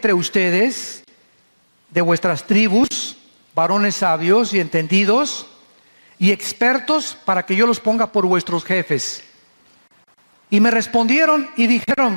ustedes, de vuestras tribus, varones sabios y entendidos y expertos, para que yo los ponga por vuestros jefes. Y me respondieron y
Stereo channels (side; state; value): both; inverted; correlation -1.00